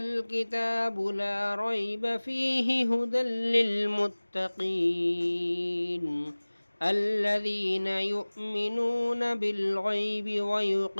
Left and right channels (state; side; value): inverted; both; correlation -1.00